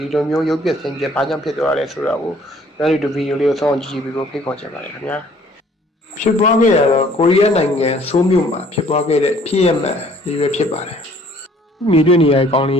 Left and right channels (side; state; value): both; normal; correlation 0.58